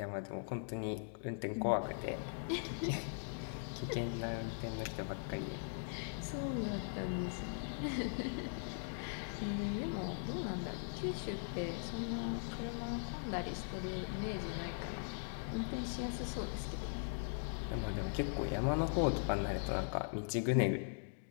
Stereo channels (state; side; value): silent; right; digital silence